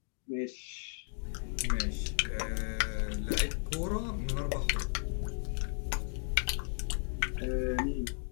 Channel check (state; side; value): silent; right; 55 dB below the other